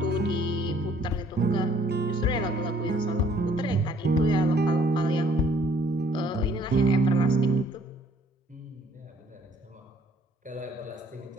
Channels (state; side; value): normal; both; correlation 0.61